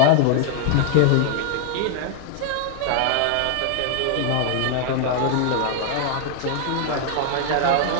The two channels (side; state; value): both; different; correlation 0.00